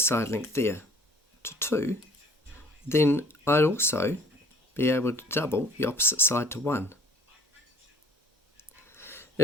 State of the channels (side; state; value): both; normal; correlation 0.54